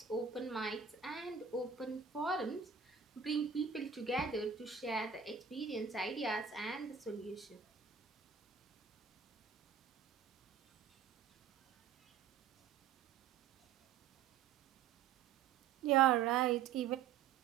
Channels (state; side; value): quieter; left; 7.0 dB